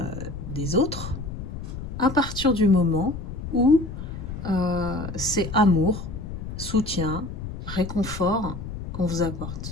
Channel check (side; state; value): left; noise; rumble, 8 dB below the sound